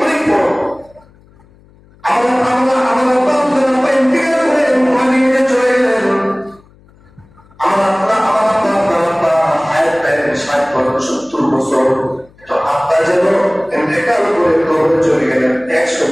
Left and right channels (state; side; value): noise; left; hum, 29 dB below the sound